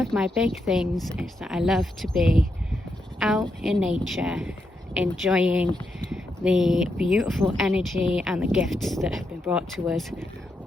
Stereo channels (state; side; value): normal; both; correlation 0.83